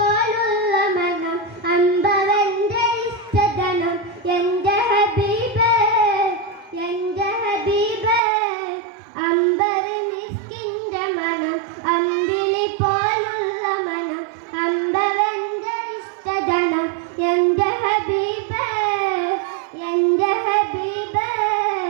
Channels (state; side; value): drops out; left; at 8.2 s